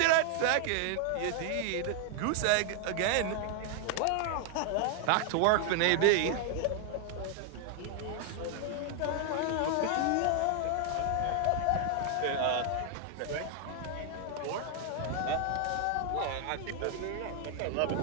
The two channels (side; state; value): both; different; correlation 0.00